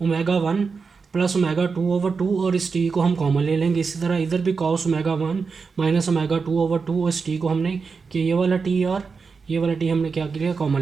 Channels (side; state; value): left; quieter; 5.0 dB